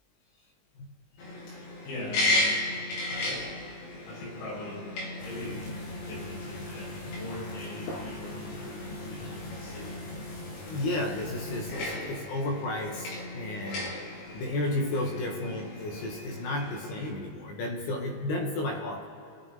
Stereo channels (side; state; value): right; late; 20 ms